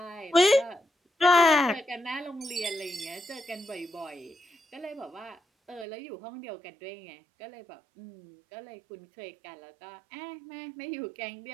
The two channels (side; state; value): left; drops out; at 5.9 s